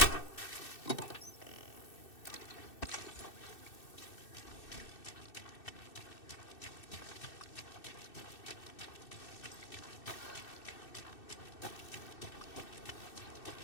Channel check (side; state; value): right; late; 2.6 ms